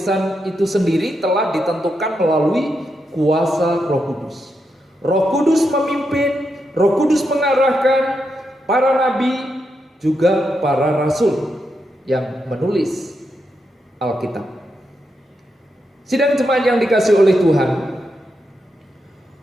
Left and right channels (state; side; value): normal; both; correlation 0.84